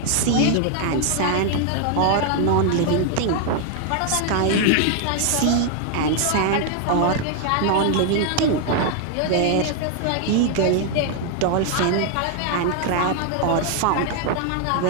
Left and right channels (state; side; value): different; both; correlation 0.00